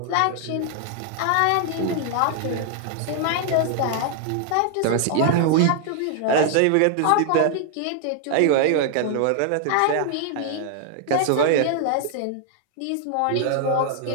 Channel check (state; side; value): different; both; correlation 0.00